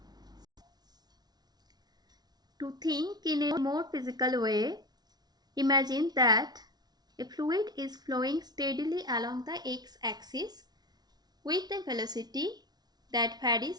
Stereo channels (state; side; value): late; left; 0.19 ms